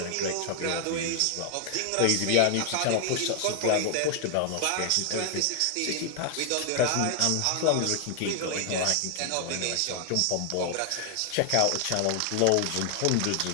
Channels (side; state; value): both; different; correlation 0.00